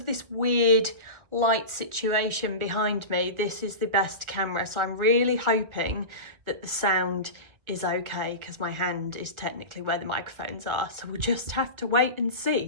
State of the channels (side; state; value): left; late; 1.4 ms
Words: this weird light situation behind me, this is the best camera. So I'm really hoping that the sound is okay because my hand is technically where the microphones are. So we'll just have to wait and